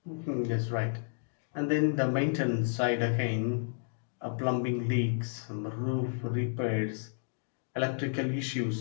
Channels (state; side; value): silent; right; digital silence